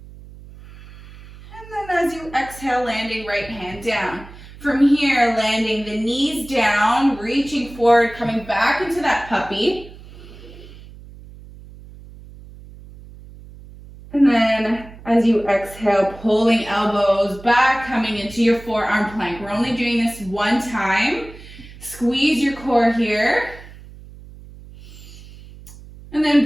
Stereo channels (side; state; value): right; noise; hum, 18 dB below the sound